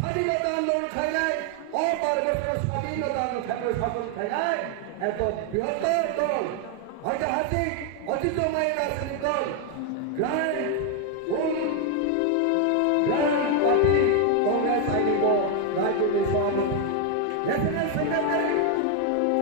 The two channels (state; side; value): different; both; correlation 0.00